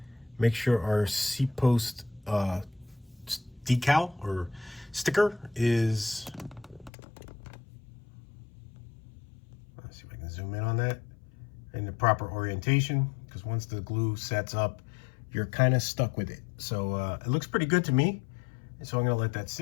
Make sure our seat post decal or sticker is, let's see if I can zoom in on that, in the proper orientation, because once the glue sets up, you're kind of stuck with it. So it looks pretty good to me, and so I'm going to let that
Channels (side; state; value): right; drops out; at 6.9 s